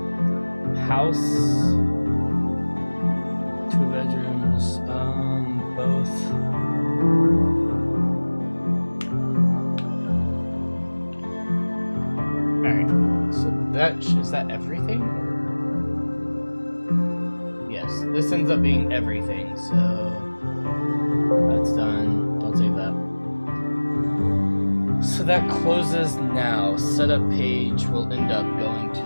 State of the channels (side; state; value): both; inverted; correlation -1.00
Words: House, 2 bedrooms, both. Alright, so is that everything? Yes, this ends up being everything, so that's done. Don't save that. So that closes now. Setup page will end up going to